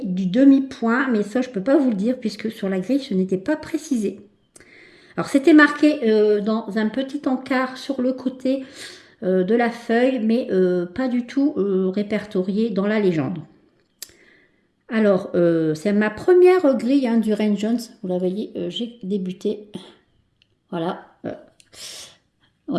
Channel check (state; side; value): identical; both; correlation 1.00